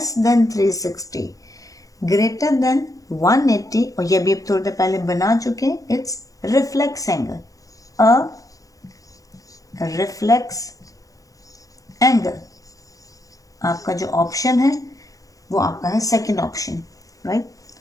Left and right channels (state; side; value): late; right; 0.17 ms